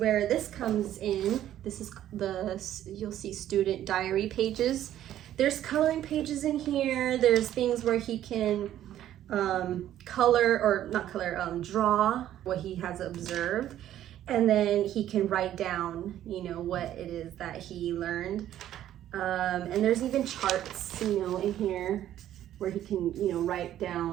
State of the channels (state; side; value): quieter; left; 12.0 dB